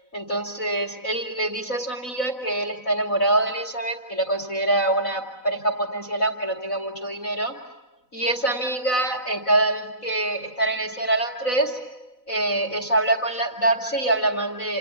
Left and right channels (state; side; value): late; right; 4.0 ms